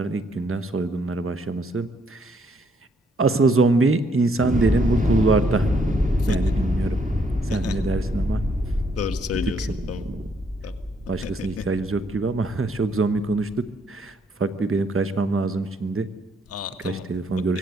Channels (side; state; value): both; normal; correlation 0.70